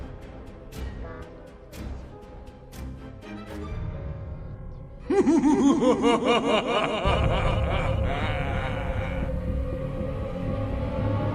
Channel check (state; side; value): identical; both; correlation 1.00